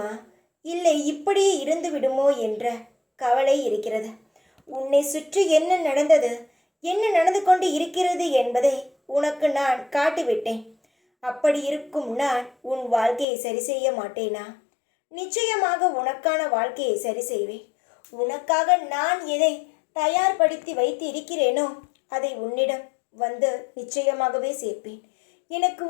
இல்லை இப்படியே இருந்து விடுமோ என்ற கவலை இருக்கிறது. உன்னை சுற்றி என்ன நடந்தது, என்ன நடந்து கொண்டு இருக்கிறது என்பதை உனக்கு நான் காட்டிவிட்டேன். அப்படி இருக்கும் நான் உன் வாழ்க்கையை சரி செய்ய மாட்டேனா? நிச்சயமாக உனக்கான வாழ்க்கையை சரி செய்வேன். உனக்காக நான் எதை தயார்படுத்தி வைத்து இருக்கிறேனோ அதை உன்னிடம் வந்து நிச்சயமாகவே சேர்ப்பேன். எனக்கு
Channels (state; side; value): drops out; right; at 13.2 s